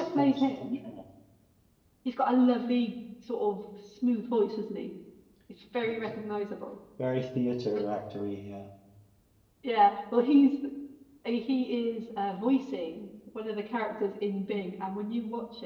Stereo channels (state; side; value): identical; both; correlation 1.00